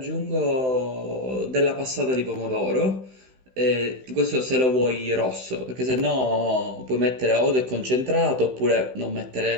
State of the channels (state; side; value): late; left; 16 ms